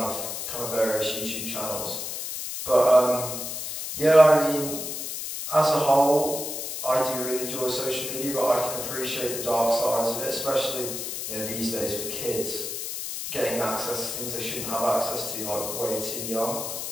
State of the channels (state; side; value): noise; left; hiss, 5 dB below the sound